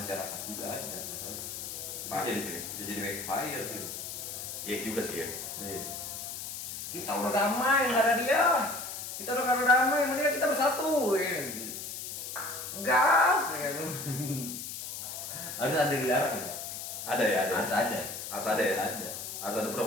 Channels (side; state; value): left; noise; hiss, 7 dB below the sound